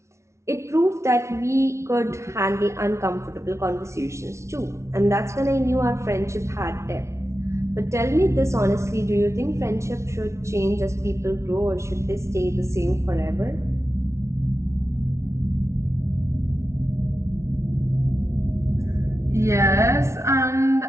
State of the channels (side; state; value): left; late; 0.13 ms